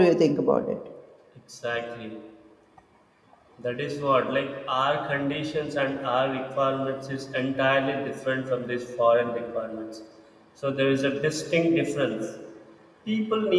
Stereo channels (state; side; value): identical; both; correlation 1.00